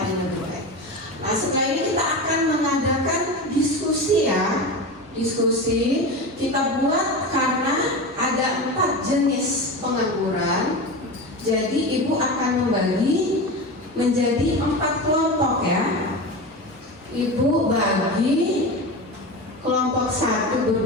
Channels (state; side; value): normal; both; correlation 0.25